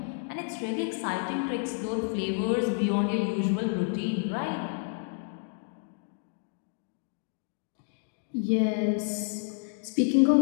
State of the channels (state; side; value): silent; right; 58 dB below the other